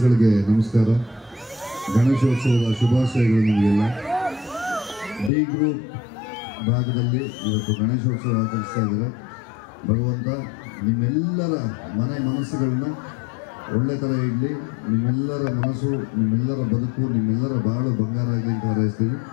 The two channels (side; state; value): right; drops out; at 5.3 s